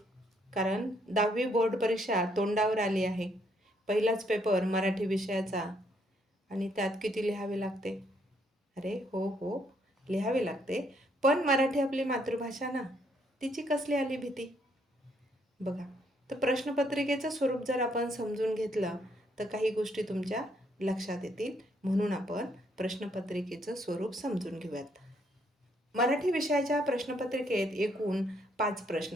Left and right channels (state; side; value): normal; both; correlation 0.71